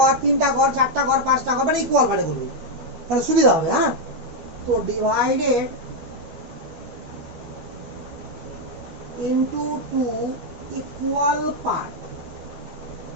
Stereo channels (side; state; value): left; late; 13 ms